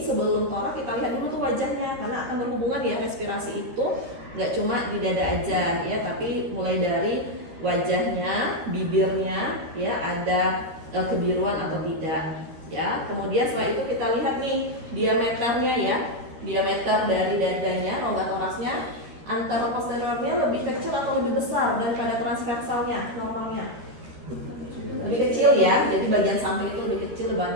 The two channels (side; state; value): left; late; 13 ms